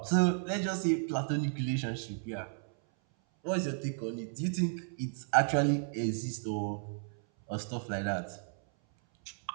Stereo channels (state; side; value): silent; left; 56 dB below the other